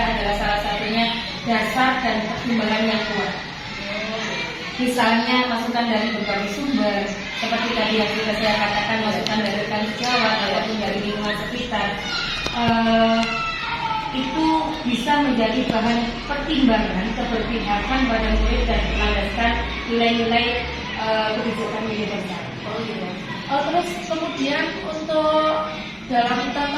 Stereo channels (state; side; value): identical; both; correlation 1.00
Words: adalah salah satunya dasar dan pertimbangan yang kuat. Misalnya masukan dari berbagai sumber, seperti tadi yang sudah saya katakan, masukan dari rekan sejawat ataupun dari lingkungan sekitar, itu bisa menjadi bahan pertimbangan keberpihakan pada murid dan melandaskan nilai-nilai kebijakan universal. Terus kemudian untuk dalam